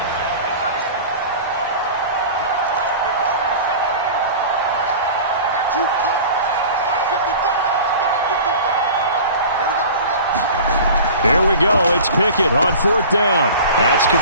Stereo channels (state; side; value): inverted; both; correlation -0.38